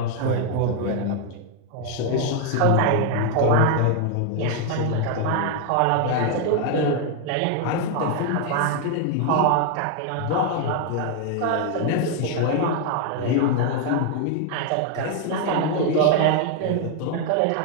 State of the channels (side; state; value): both; different; correlation 0.01